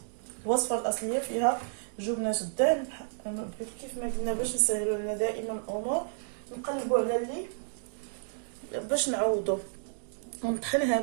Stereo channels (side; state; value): left; silent; digital silence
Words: الوصفه الاصليه فيها جبنه الدهن. كيف ما قلنا باش نسهلوا لنا دائما الامور نقلبوا على اللي باش نعوضوا ونطحن